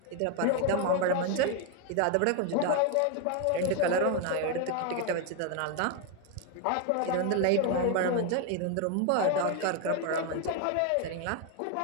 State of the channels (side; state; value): both; different; correlation 0.01